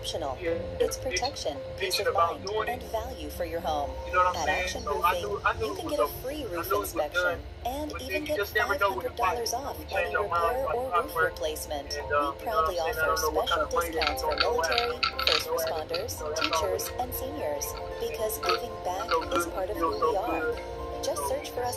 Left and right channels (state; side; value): identical; both; correlation 1.00